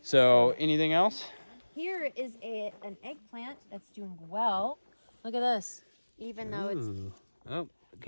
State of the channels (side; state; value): both; inverted; correlation -1.00